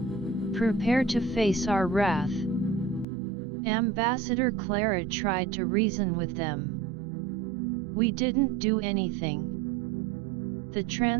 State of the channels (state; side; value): drops out; left; at 3.1 s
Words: Prepare to face our wrath." Ambassador Clara tried to reason with them. "We didn't do anything. The